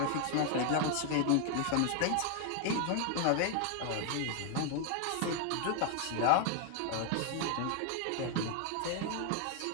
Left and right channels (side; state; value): both; different; correlation 0.01